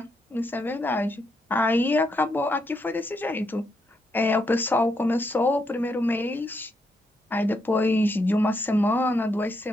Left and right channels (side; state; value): both; normal; correlation 0.79